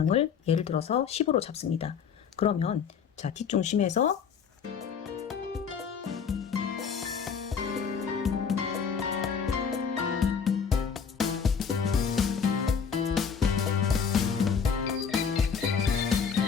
예를 들어서 10으로 잡습니다. 그러면 자, 뒷중심에서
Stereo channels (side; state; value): right; quieter; 6.6 dB